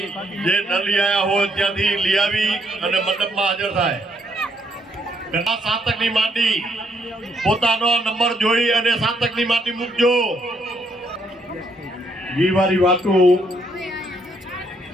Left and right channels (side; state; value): both; normal; correlation 0.72